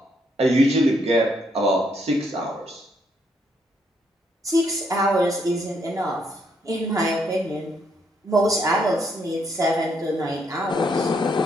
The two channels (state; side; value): normal; both; correlation 0.73